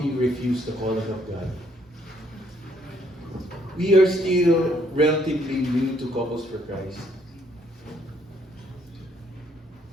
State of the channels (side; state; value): both; normal; correlation 0.68